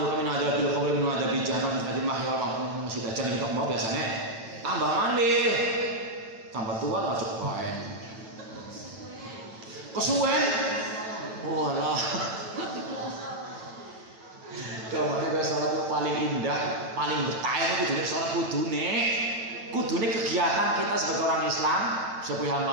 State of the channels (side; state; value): left; late; 9.0 ms